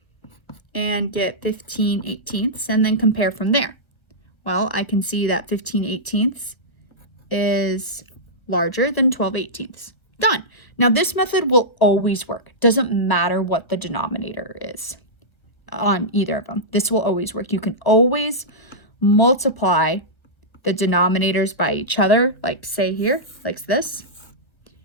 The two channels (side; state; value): right; late; 1.3 ms